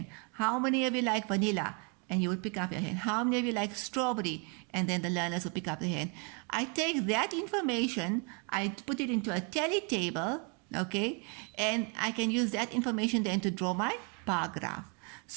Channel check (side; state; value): left; quieter; 35.9 dB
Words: How many of you like vanilla? And you would pick up your hand. How many of you like strawberry? And then the learners would pick up their hand. I take that information, I put it into a tally table, okay, and I can use that information then to draw my bar graph.